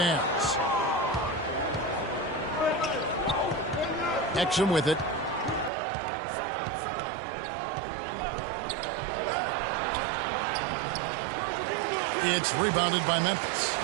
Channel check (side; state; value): left; drops out; at 5.7 s